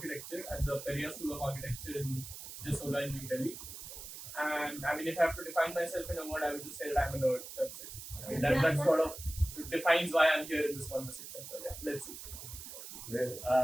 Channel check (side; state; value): right; noise; hiss, 11 dB below the sound